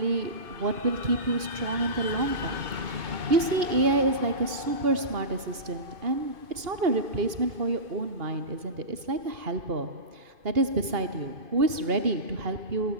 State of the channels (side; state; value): left; late; 2.8 ms